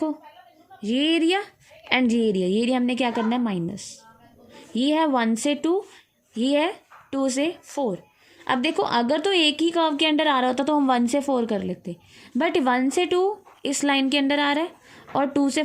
ये एरिया एंड ये एरिया हमने क्या करना है, माइनस। ये है 1 से 2, ये है 2 से 4। अब देखो अगर तो एक ही कर्व के अंडर आ रहा होता तो हम 1 से 4 कर लेते, बट 1 से 2 इस लाइन के अंदर आ रहा है और 2 से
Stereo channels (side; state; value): both; identical; correlation 1.00